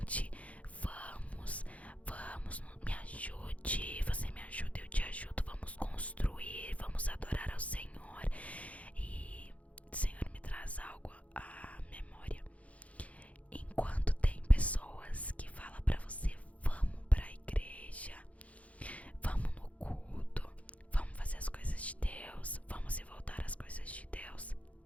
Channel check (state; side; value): late; right; 0.066 ms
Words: vamos, me ajude, você me ajuda, eu te ajudo, vamos construir, vamos adorar ao Senhor. E o Senhor me traz algo à memória. Enquanto tem pessoas que falam pra você: vamos pra igreja, vamos no culto, vamos fazer as coisas de Deus, vamos se voltar às coisas de Deus,